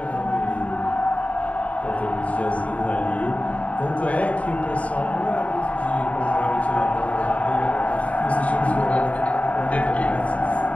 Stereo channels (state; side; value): late; right; 0.067 ms